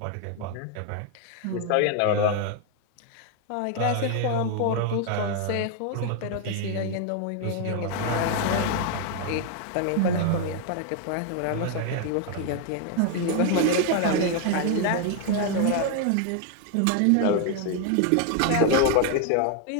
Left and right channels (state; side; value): different; both; correlation 0.00